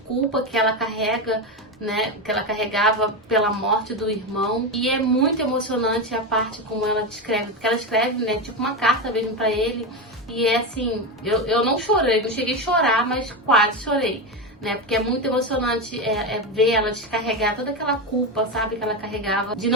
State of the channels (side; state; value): both; normal; correlation 0.15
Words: que ela carrega, né, que ela carregava pela morte do irmão. E é muito emocionante a parte como ela descreve, porque ela escreve, né, tipo uma carta mesmo para ele, e é assim, eu não chorei, não cheguei a chorar, mas quase chorei, né? Porque é muito emocionante ver ela descarregar toda aquela culpa, sabe, que ela carregava de